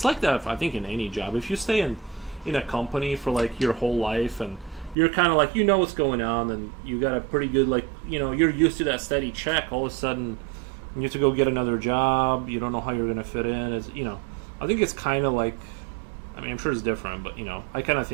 like that, I think, in any job. If you stay in a company for, like, your whole life, and you're kind of like, what's going on, and you got a pretty good, like, you're used to that steady check, all of a sudden, you have to go get another job, you don't know how you're going to fit in, I think it's kind of like, I mean, I'm sure it's different, but, I kind of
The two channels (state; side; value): drops out; left; at 5.0 s